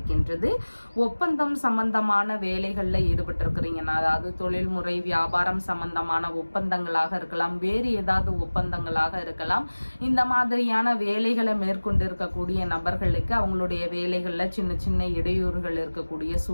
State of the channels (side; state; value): both; inverted; correlation -1.00